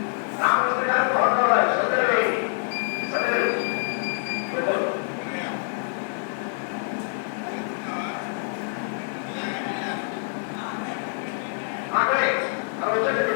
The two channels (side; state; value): right; silent; digital silence